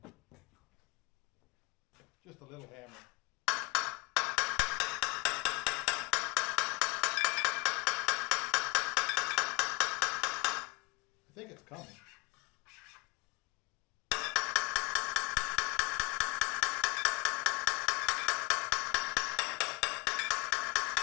Just a little hammer. I think it's coming.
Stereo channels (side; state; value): right; quieter; 26.0 dB